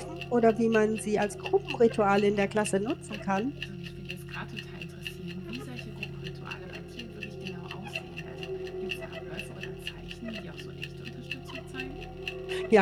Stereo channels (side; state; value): both; identical; correlation 1.00